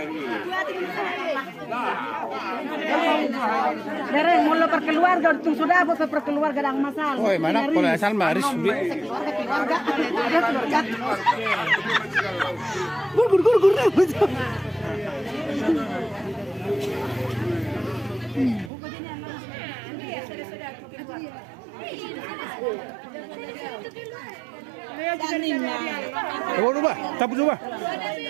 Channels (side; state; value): left; drops out; at 18.7 s